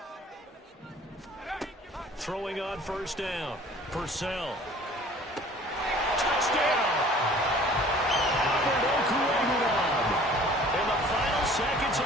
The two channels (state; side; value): normal; both; correlation 0.50